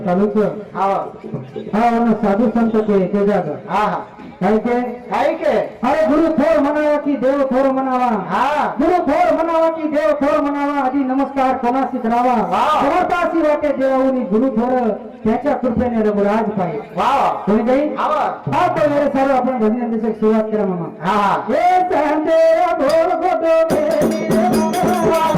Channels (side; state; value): both; identical; correlation 1.00